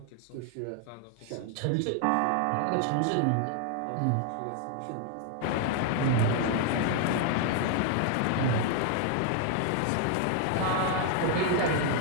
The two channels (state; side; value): different; both; correlation 0.00